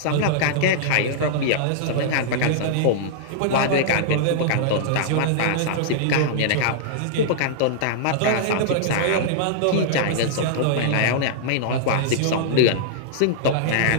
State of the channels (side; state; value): both; different; correlation -0.02